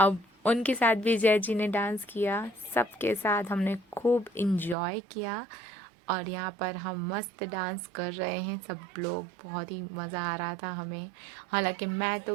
उनके साथ भी जय जी ने डांस किया, सबके साथ हमने खूब इंजॉय किया और यहाँ पर हम मस्त डांस कर रहे हैं सब लोग, बहुत ही मज़ा आ रहा था हमें। हालांकि मैं तो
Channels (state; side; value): drops out; left; at 4.8 s